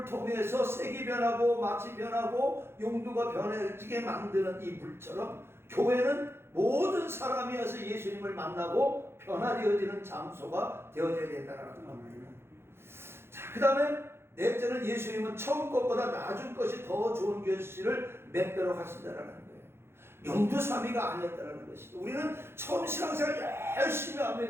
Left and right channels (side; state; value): left; late; 0.12 ms